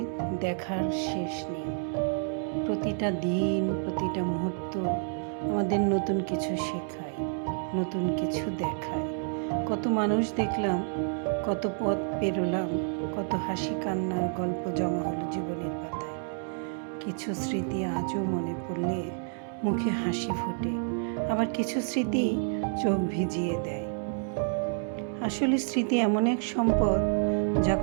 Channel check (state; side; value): silent; left; 58 dB below the other